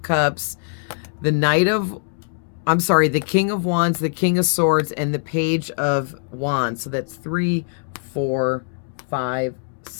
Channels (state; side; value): silent; right; 64 dB below the other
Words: Cups, the the King of Wands, the King of Swords, and the Page of Wands. So that's 3, 4, 5,